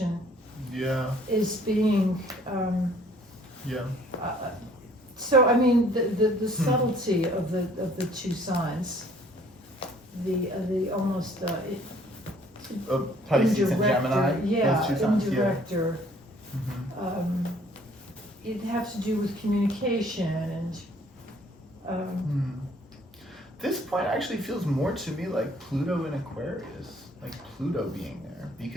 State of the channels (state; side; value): normal; both; correlation 0.58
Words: Yeah. is being Yeah. So, I mean, the subtlety of the two signs, the almost, Pisces and indirect Gemini. or- yeah, those two signs. indirect or, Yeah. it has to do with communication and, This point actually feels more to me like Pluto in Aquarius, like Pluto being there,